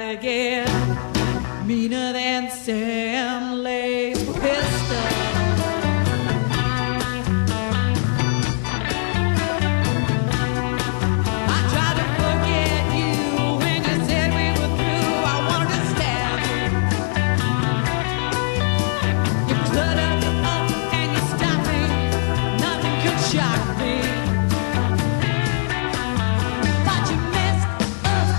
get meaner than Sam Lay's pistol. I tried to forget you when you said we were through. I wanted to stab you. You cluttered me up and you stopped me. Nothing could shock me.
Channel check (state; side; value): silent; right; digital silence